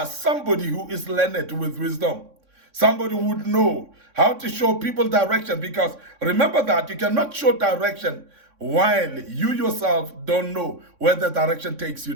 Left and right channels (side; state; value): left; late; 3.6 ms